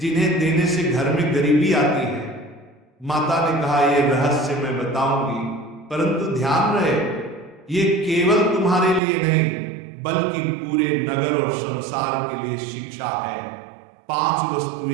जिन्हें देने से घर में गरीबी आती है। माता ने कहा, यह रहस्य मैं बताऊंगी, परंतु ध्यान रहे ये केवल तुम्हारे लिए नहीं बल्कि पूरे नगर और संसार के लिए शिक्षा है। 5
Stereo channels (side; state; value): left; drops out; at 9.0 s